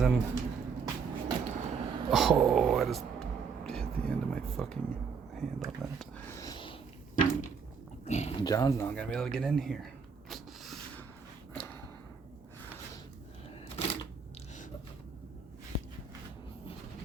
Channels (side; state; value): left; quieter; 5.8 dB